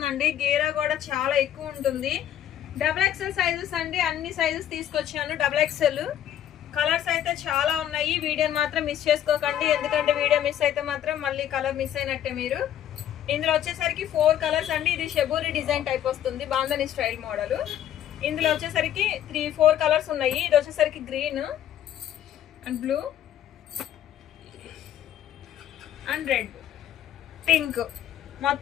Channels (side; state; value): right; quieter; 10.9 dB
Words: గీరా కూడా చాలా ఎక్కువ ఉంటుంది. XXL సైజెస్ అండి, అన్ని సైజెస్ తీసుకొచ్చాను. XXL కలర్స్ అయితే చాలా ఉన్నాయి. వీడియోని మాత్రం మిస్ చేసుకోకండి, ఎందుకంటే వీడియో మిస్ అయితే మాత్రం మళ్ళీ కలర్ మిస్ అయినట్టే మీరు. ఇందులో వచ్చేసరికి 4 కలర్స్ అండి. ఇది షెబూరి డిజైన్ టైప్ వస్తుంది, బాందని స్టైల్ మోడల్. ఇందులో వచ్చేసరికి 4 కలర్స్ ఉన్నాయి. ఇది వచ్చేసరికి green and blue and red, pink,